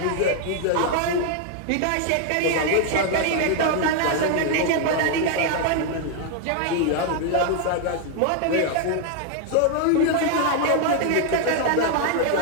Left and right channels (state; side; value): different; both; correlation 0.00